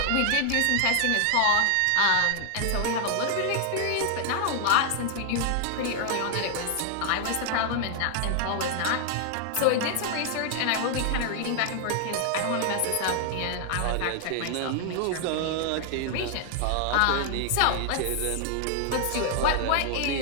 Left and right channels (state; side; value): different; both; correlation 0.00